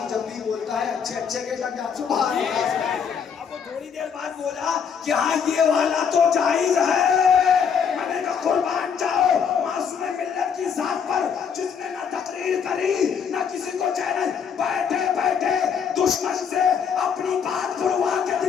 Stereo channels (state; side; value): quieter; right; 7.0 dB